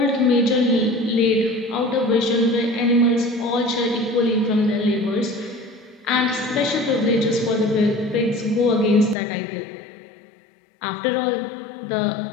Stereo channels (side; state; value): right; drops out; at 9.2 s